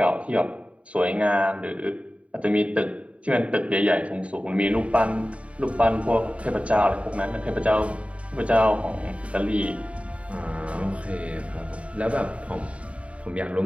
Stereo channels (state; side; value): late; left; 0.064 ms